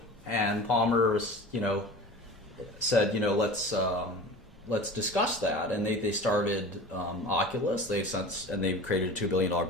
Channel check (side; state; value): both; normal; correlation 0.36